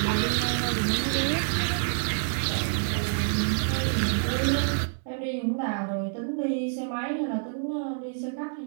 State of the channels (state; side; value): silent; left; 60 dB below the other